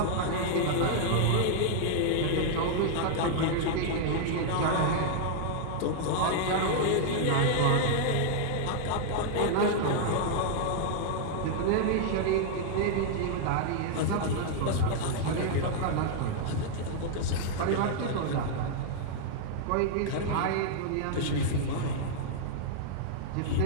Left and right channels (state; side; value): different; both; correlation -0.01